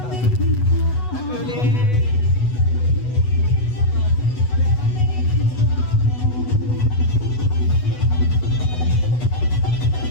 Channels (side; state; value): right; late; 8.1 ms